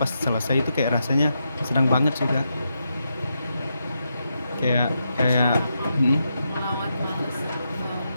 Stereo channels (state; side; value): inverted; both; correlation -0.84